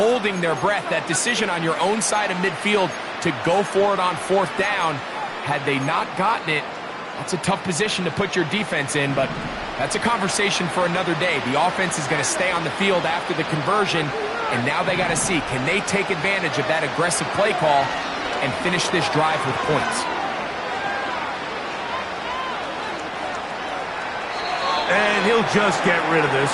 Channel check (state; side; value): identical; both; correlation 1.00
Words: their breath. That decision on your own side of midfield to go for it on 4th down, had they not gotten it, that's a tough position to put your defense in, but that's a conversation for another day. The offense is going to stay on the field after the conversion, and now they got to see, can they take advantage of that aggressive play call and finish this drive with points? And he'll just get rid of this.